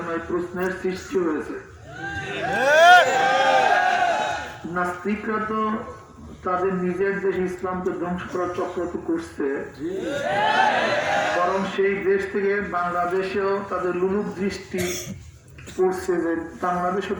না এই প্রশ্নের সৃষ্টি হয়েছে। নাস্তিকরা তো তাদের নিজের দেশ ইসলামকে ধ্বংস করার চক্র তো করছে, বরং সেই দেশ থেকে বাংলাদেশেও তাদের লুলুক দৃষ্টি পড়ছে যে বাংলাদেশও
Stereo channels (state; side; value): identical; both; correlation 1.00